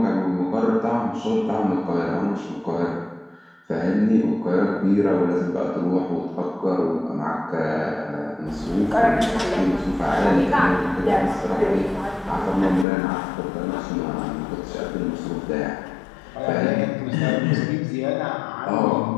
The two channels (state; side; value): drops out; right; at 12.9 s